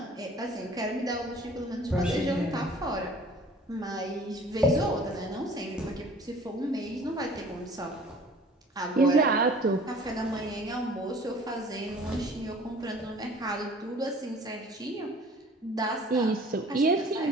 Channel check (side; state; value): both; normal; correlation 0.49